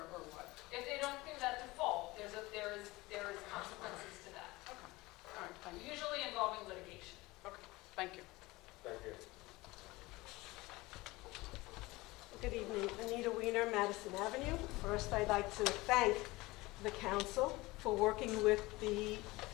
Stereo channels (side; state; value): right; quieter; 21.0 dB